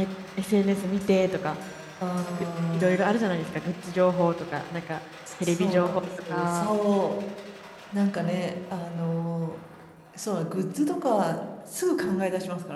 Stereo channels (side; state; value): both; identical; correlation 1.00